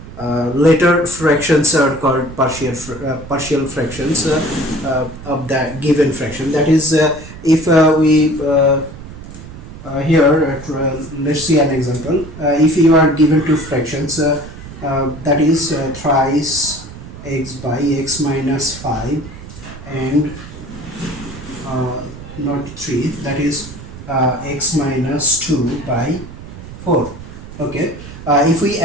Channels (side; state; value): right; noise; rumble, 14 dB below the sound